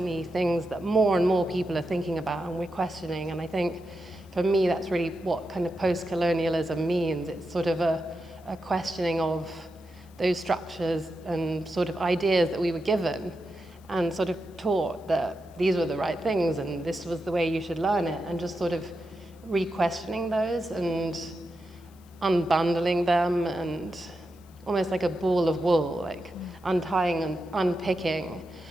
things that more and more people are thinking about and we're questioning. And I think for me, that's really what kind of post-colonialism means. It's sort of a questioning of those structures and sort of ideas that we were given and sort of taught that these were the right things and this was the way you should learn it, and just sort of re-questioning those and unbundling them, and almost like a ball of wool, like untying and unpicking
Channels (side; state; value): left; noise; hiss, 29 dB below the sound